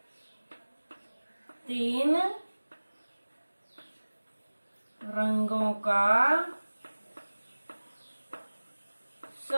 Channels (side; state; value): both; inverted; correlation -1.00